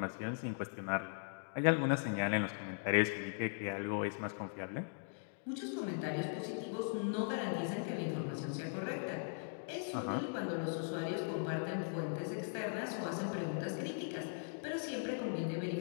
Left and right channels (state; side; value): silent; right; digital silence